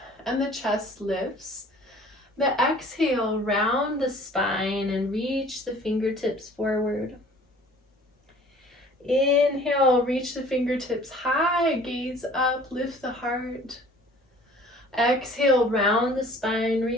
and the chest lifts. The exhale, round the spine and reach the fingertips forward. Inhale, reach the fingertips high, gaze up, lift the heart. Exhale, round the spine,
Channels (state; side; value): normal; both; correlation 0.50